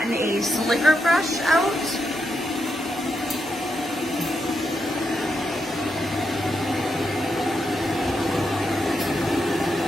a slicker brush out.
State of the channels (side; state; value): both; normal; correlation 0.83